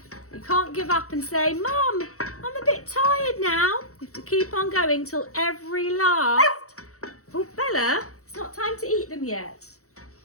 You can't give up and say, Mum, I'm a bit tired now. You have to keep on going till every last... Oh, Bella, it's not time to eat them yet.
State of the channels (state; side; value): late; right; 0.65 ms